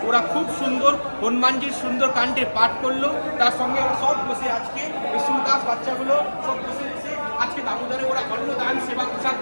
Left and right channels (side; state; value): both; inverted; correlation -1.00